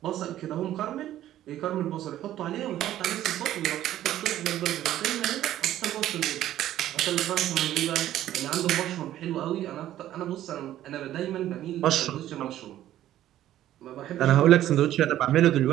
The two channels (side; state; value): left; quieter; 12.9 dB